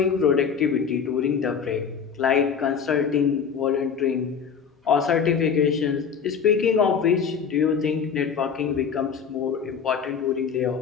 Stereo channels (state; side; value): quieter; right; 6.6 dB